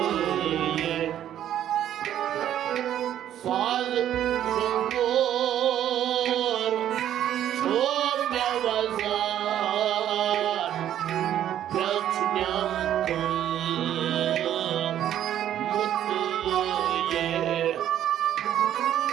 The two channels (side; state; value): left; quieter; 11.1 dB